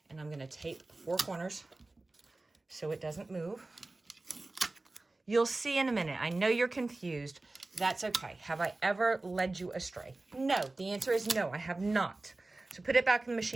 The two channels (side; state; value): left; quieter; 3.1 dB